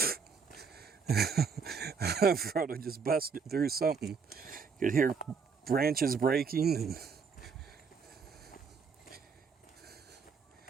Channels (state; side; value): quieter; left; 5.6 dB